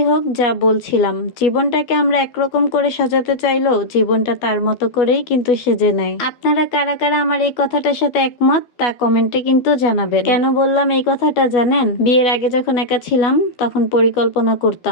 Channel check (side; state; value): right; late; 12 ms